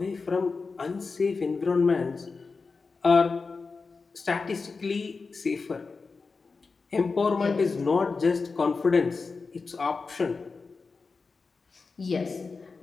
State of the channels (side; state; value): right; quieter; 4.4 dB